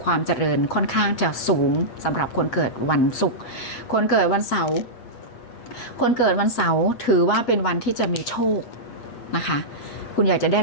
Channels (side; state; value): right; late; 8.3 ms